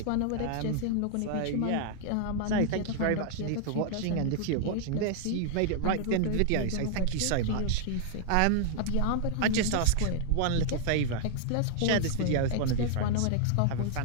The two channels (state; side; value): different; both; correlation 0.00